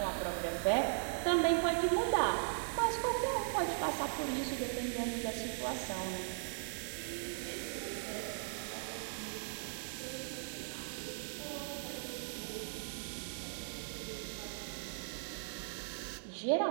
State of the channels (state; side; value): silent; left; digital silence